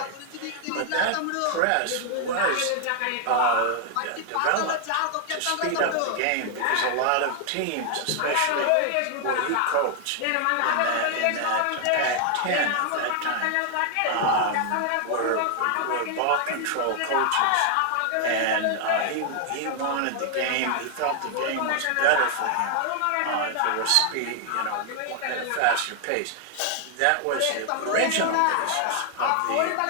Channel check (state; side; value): different; both; correlation 0.00